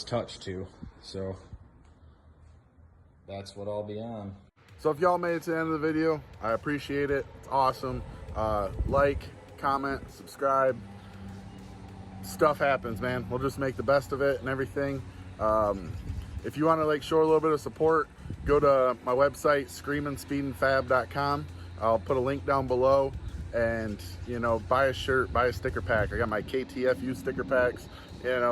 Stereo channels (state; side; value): identical; both; correlation 1.00